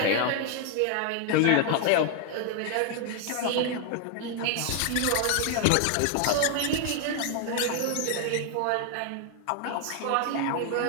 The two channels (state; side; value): different; both; correlation 0.00